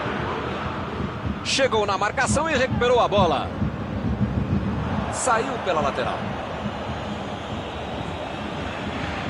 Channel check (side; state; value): both; identical; correlation 1.00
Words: Chegou na marcação e recuperou a bola. Saiu pela lateral.